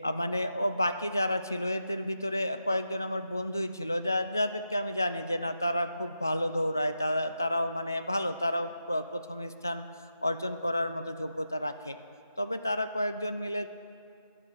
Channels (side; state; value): both; inverted; correlation -0.87